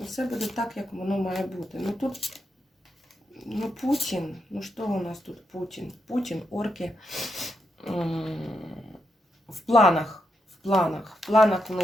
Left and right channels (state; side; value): normal; both; correlation 0.82